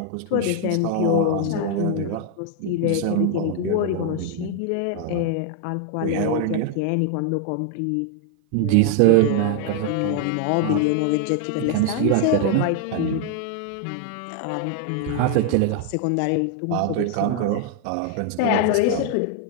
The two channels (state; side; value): different; both; correlation 0.00